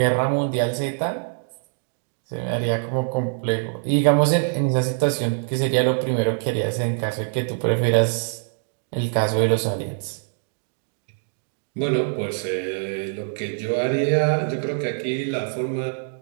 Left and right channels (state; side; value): silent; left; digital silence